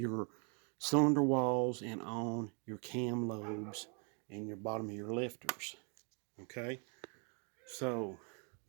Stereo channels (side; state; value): left; quieter; 38.0 dB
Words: cylinder walls and on your cam lobes and your bottom of your lifters. Okay, so